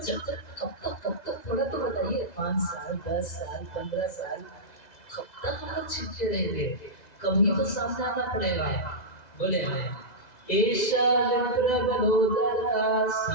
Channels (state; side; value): late; right; 2.0 ms